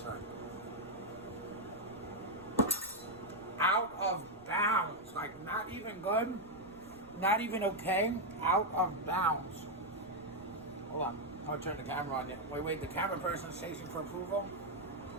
Out of bounds. Like, not even good. Not even okay. Out of bounds. Hold on. I'll turn the camera on. Wait. The camera person's chasing for approval.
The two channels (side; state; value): right; noise; rumble, 25 dB below the sound